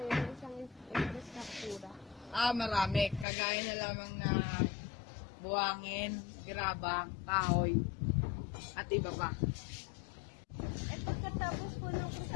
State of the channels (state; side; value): drops out; right; at 3.2 s